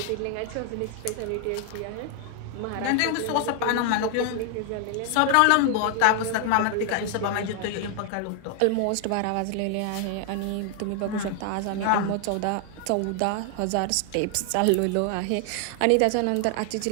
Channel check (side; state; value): both; different; correlation 0.00